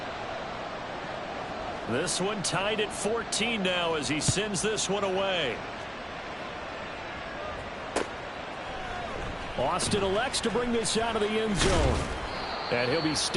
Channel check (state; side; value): identical; both; correlation 1.00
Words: This one tied at 14 now as he sends this one away. Austin elects to bring this out of the end zone. And he'll be